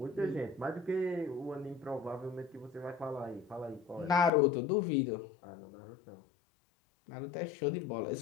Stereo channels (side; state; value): right; drops out; at 4.3 s